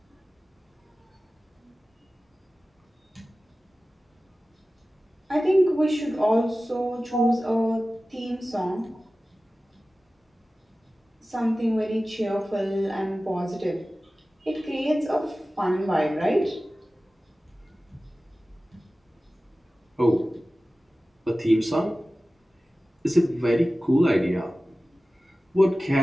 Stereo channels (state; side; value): normal; both; correlation 0.96